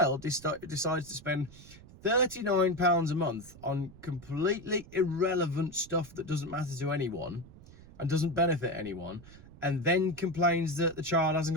decides to spend £39 a month on completely irrelevant stuff that doesn't matter to anyone and doesn't benefit anyone, and then complains that the child hasn't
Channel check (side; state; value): right; noise; rumble, 20 dB below the sound